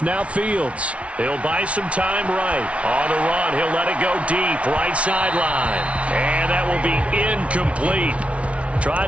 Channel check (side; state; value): left; late; 0.062 ms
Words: Now Fields. He'll buy some time right. On the run, he'll let it go deep. Right sideline. And that will be incomplete. Tried